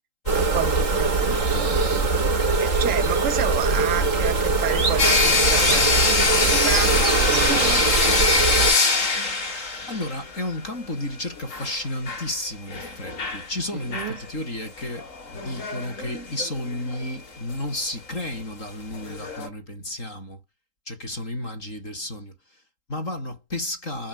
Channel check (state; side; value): late; right; 3.8 ms